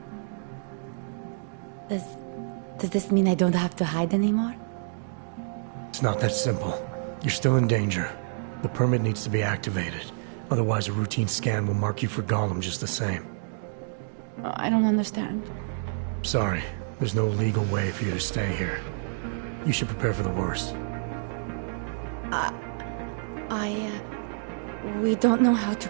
Does this mean I don't have to hide anymore? It's not that simple. You're still in danger. The permit needs to be activated. Otherwise, a routine scan will mark you for Golem just the same. I don't understand. Sorry. There's no legal way for you to stay here. You should prepare for the worst. We don't know how to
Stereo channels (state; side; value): silent; left; digital silence